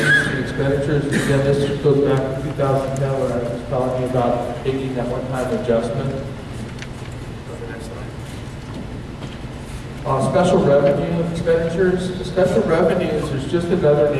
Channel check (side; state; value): both; identical; correlation 1.00